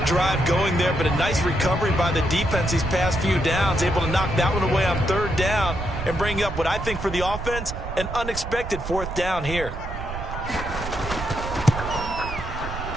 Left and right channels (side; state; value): right; noise; rumble, 7 dB below the sound